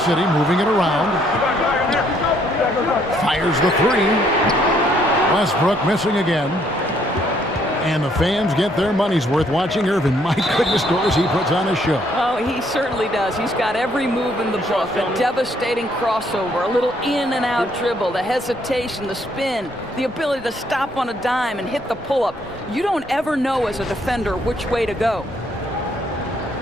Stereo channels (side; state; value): both; normal; correlation 0.68